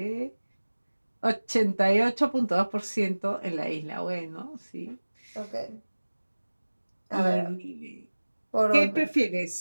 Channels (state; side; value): inverted; both; correlation -1.00